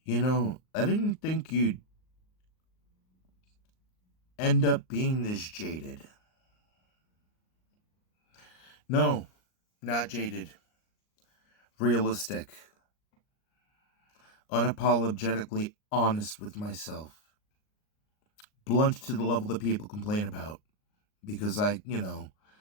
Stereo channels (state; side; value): late; right; 38 ms